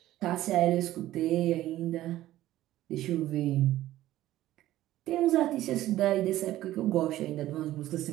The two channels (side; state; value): left; quieter; 14.6 dB